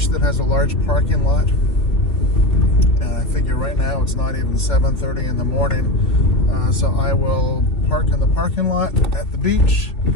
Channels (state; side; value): late; right; 3.0 ms